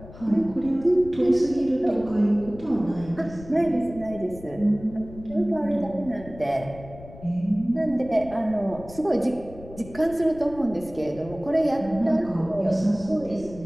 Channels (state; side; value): noise; left; rumble, 17 dB below the sound